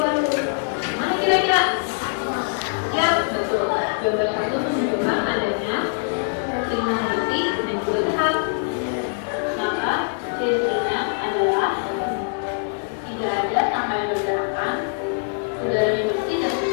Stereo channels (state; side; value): silent; right; digital silence